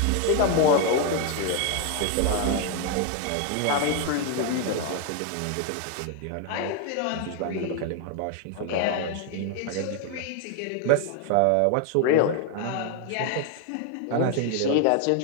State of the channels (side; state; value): both; different; correlation 0.01